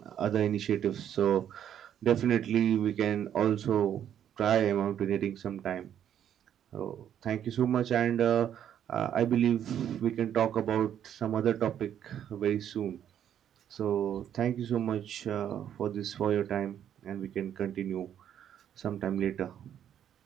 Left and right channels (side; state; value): left; quieter; 9.8 dB